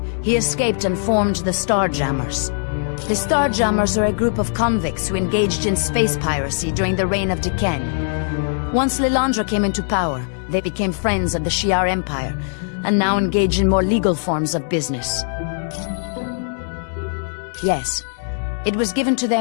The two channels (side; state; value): right; silent; 65 dB below the other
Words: he escaped and formed the Starjammers. The Starjammers are a group of convicts who engaged in space piracy during the reign of D'Ken. Once Lilandra came into power, they became friends of the Shi'ar Empire, and now engage in more legal forms of business. Yes, it was given to